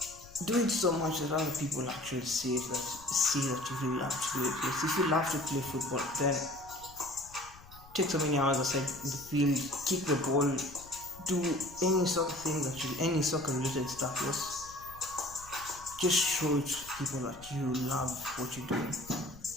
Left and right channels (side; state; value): left; noise; rumble, 21 dB below the sound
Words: do it so much that other people actually see that you really love to do it. Yes. If you love to play football, then take so many hours aside in the field, kick the ball, do any sort of thing any soccer related stuff. Yes. Just show it to people that you love what you're doing.